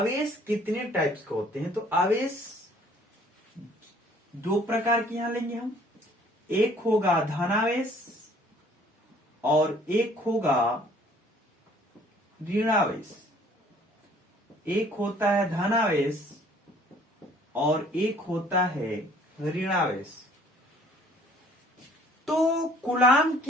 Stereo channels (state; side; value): normal; both; correlation 0.57